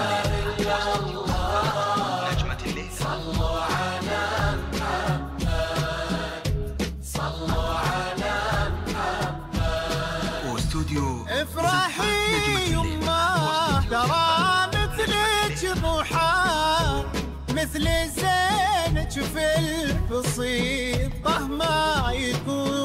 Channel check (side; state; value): both; identical; correlation 1.00